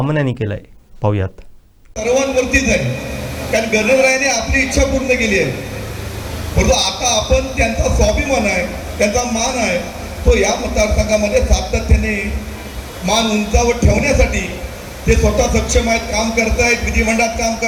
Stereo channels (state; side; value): identical; both; correlation 1.00